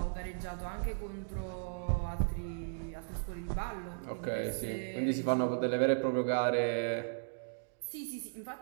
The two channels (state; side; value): silent; left; digital silence